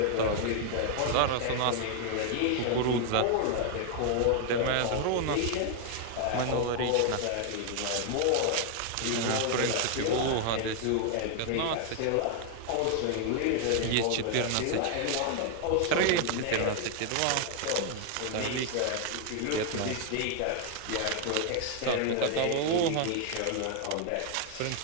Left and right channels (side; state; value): both; different; correlation 0.00